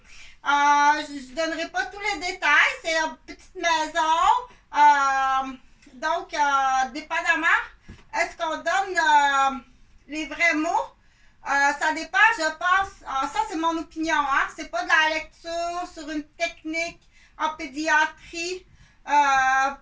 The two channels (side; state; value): both; identical; correlation 1.00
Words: Je ne donnerai pas tous les détails. C'est une petite maison. Donc, dépendamment, est-ce qu'on donne les vrais mots? Ça dépend, je pense. Ça, c'est mon opinion. Hein? C'est pas de la lecture sur une technique en pédiatrie,